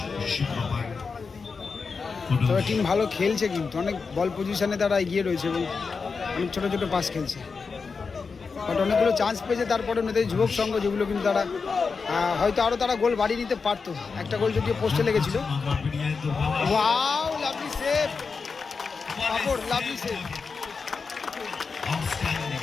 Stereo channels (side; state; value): right; quieter; 4.9 dB